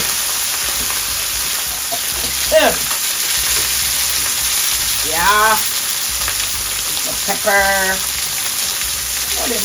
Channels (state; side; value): identical; both; correlation 1.00